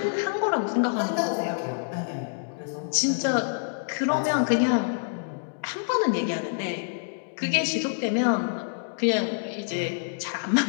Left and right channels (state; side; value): silent; right; digital silence